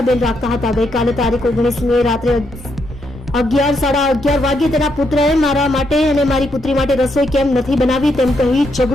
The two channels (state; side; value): normal; both; correlation 0.78